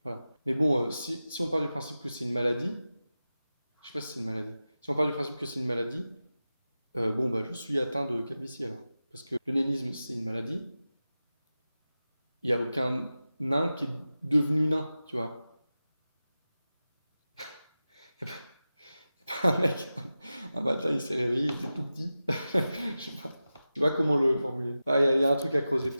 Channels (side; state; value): both; inverted; correlation -0.94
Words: Voilà. Mais bon, si on part du principe que c'est une maladie, je sais pas si c'est une maladie. Si on part du principe que c'est une maladie, je suis atteint de calvitie alors. Parce que le nénisme, c'est une maladie. Il n'y a aucun nain qui est devenu nain, tu vois. Il n'y a pas un mec, un matin, il s'est réveillé, il était tout petit. Je sais pas comment le formuler. Il y a un truc à creuser,